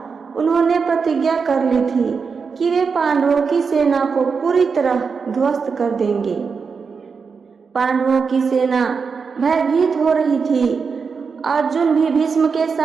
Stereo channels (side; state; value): left; quieter; 5.4 dB